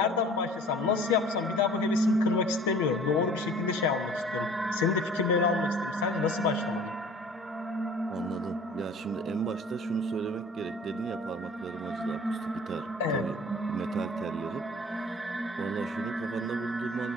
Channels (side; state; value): both; normal; correlation 0.48